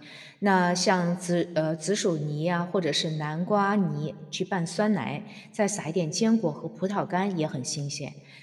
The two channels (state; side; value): identical; both; correlation 1.00